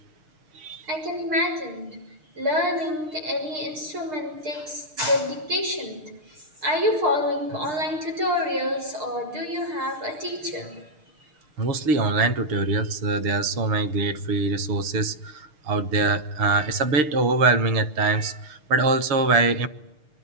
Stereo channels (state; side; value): late; left; 6.5 ms